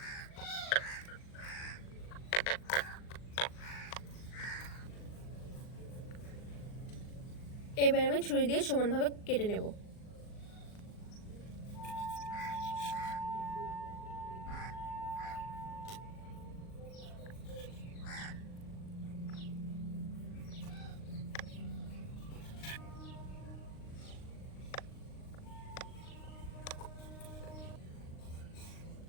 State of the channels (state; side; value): late; right; 39 ms